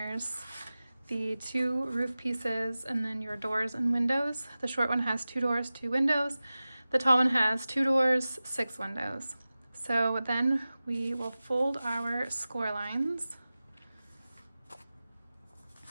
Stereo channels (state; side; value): inverted; both; correlation -0.96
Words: the 2 roof pieces, and then your doors and windows. The short one has 2 doors, 2 windows. The tall one has 2 doors, 6 windows. So then we will fold our score lines.